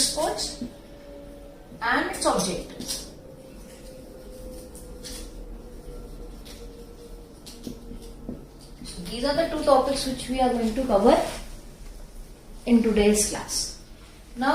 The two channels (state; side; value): identical; both; correlation 1.00